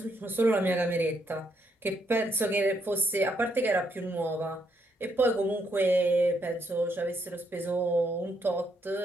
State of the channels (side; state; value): both; normal; correlation 0.75